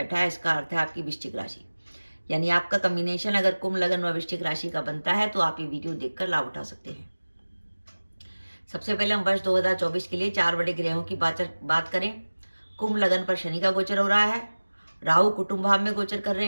है, इसका अर्थ है आपकी वृश्चिक राशि। यानी आपका कॉम्बिनेशन अगर कुंभ लगन व वृश्चिक राशि का बनता है तो आप ये वीडियो देखकर लाभ उठा सकते हैं। सबसे पहले हम वर्ष 2024 के लिए 4 बड़े ग्रहों की बात करें। कुंभ लगन पर शनि का गोचर हो रहा है। राहु कुटुंब भाव में गोचर कर रहे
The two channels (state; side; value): inverted; both; correlation -1.00